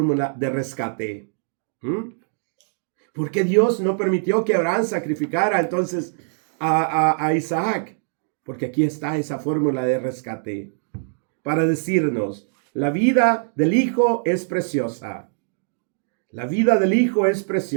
de rescate. ¿Por qué Dios no permitió que Abraham sacrificara entonces a Isaac? Porque aquí está esa fórmula de rescate para decirnos, la vida del Hijo es preciosa. La vida del Hijo es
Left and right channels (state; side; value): silent; left; digital silence